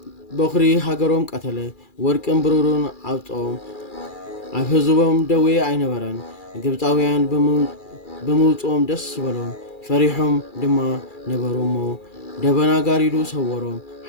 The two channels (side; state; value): right; late; 2.4 ms